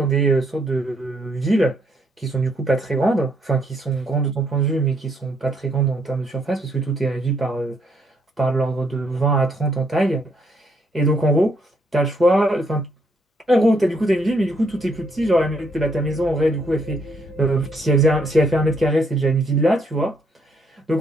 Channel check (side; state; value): both; normal; correlation 0.72